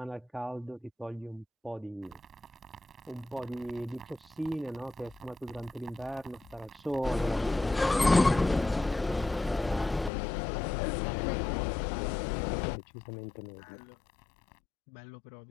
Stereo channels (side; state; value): right; drops out; at 10.1 s